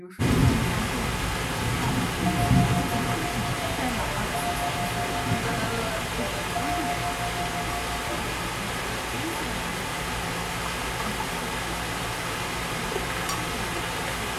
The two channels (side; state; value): both; identical; correlation 1.00